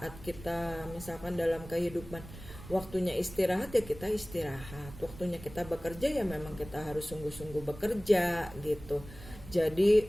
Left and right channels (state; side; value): noise; right; rumble, 15 dB below the sound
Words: kita misalkan dalam kehidupan waktunya istirahat ya kita istirahat, waktunya kita bekerja ya memang kita harus sungguh-sungguh bekerja gitu. Jadi